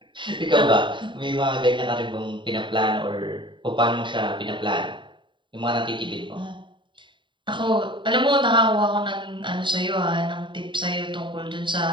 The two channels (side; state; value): left; late; 0.23 ms